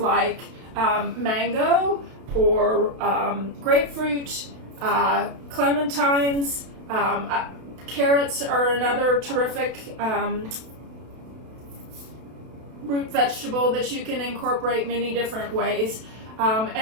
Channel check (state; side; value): late; left; 32 ms